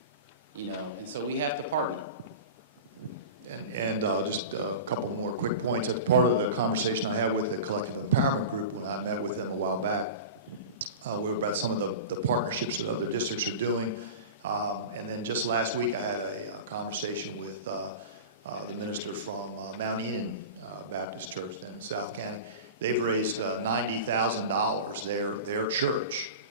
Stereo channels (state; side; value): inverted; both; correlation -0.31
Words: You know, and so we have to partner. And just a couple more quick points. That's part of the conversation I had with the Collective Empowerment Group when I met with them a while back. We were about some of the partnerships that other districts are doing. And then just last week I had a conversation with the minister from Mount Enon Baptist Church down in South County. They've raised $90,000, their church,